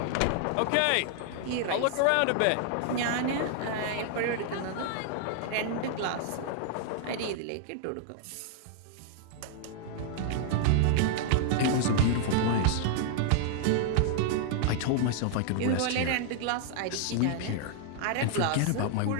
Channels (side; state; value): both; different; correlation 0.00